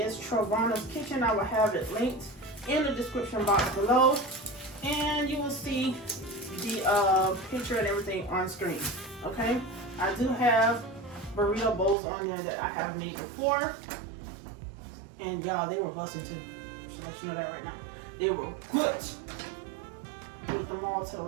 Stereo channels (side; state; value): left; drops out; at 12.0 s